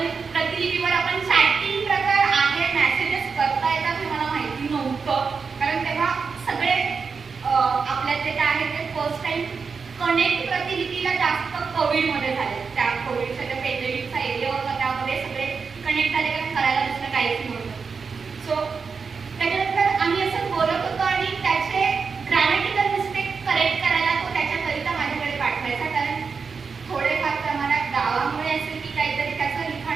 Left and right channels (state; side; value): quieter; left; 5.3 dB